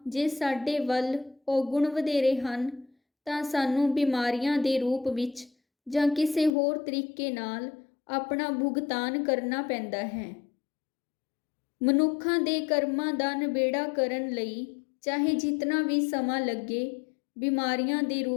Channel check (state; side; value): drops out; right; at 6.6 s